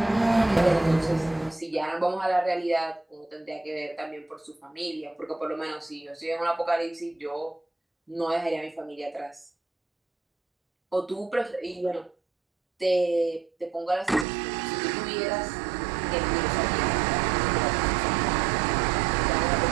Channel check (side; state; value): left; drops out; at 14.2 s